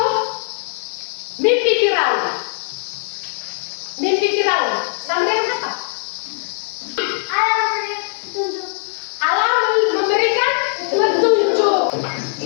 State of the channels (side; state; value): right; silent; 65 dB below the other